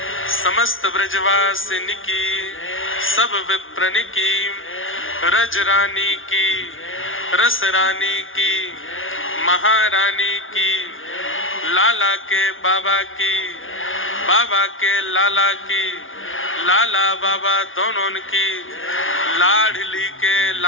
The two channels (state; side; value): late; right; 0.58 ms